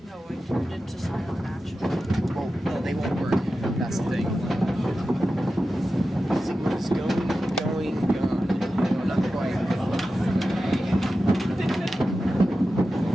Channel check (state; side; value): normal; both; correlation 0.93